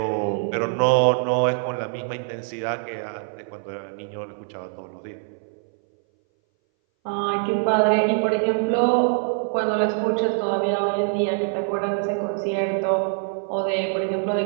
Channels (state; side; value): silent; left; 60 dB below the other